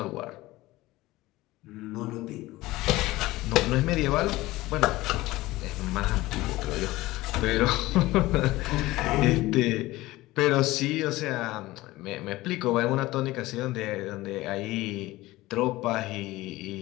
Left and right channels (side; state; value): right; quieter; 18.5 dB